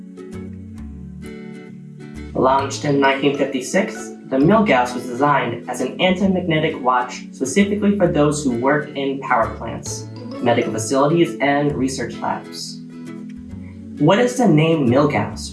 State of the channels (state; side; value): identical; both; correlation 1.00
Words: Launched in 1956, the Milgauss was designed as an anti-magnetic watch specifically for those who work in power plants, medical facilities, and research labs. What is the name